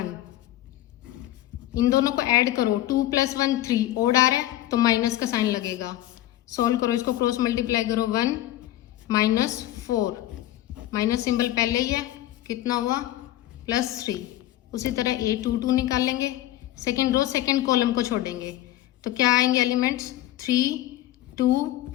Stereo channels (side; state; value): right; quieter; 14.5 dB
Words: इन दोनों को ऐड करो, 2 + 1 3, ओड आ रहा है तो माइनस का साइन लगेगा। सॉल्व करो, इसको क्रॉस मल्टीप्लाई करो, 1 -4, माइनस सिंबल पहले ही है, कितना हुआ +3। उसी तरह A22 निकाल लेंगे, सेकेंड रो सेकेंड कॉलम को छोड़ेंगे तो क्या आएंगे एलिमेंट्स, 3 2